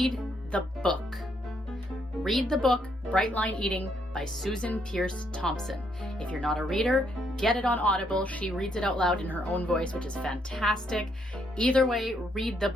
the book. Read the book Bright Line Eating by Susan Peirce Thompson. If you're not a reader, get it on Audible. She reads it out loud in her own voice, which is fantastic. Either way, read the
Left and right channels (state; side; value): normal; both; correlation 0.74